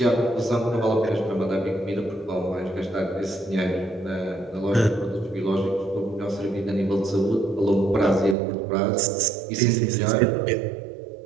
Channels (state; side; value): drops out; left; at 8.3 s